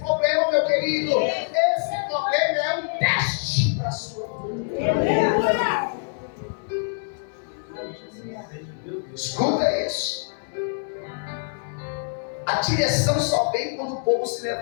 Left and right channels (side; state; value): right; silent; digital silence